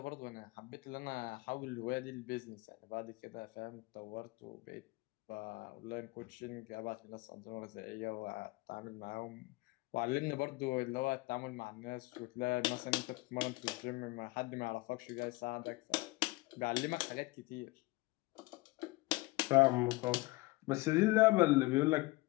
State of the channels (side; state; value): right; quieter; 22.3 dB